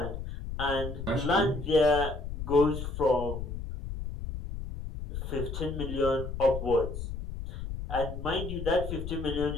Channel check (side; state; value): left; noise; rumble, 7 dB below the sound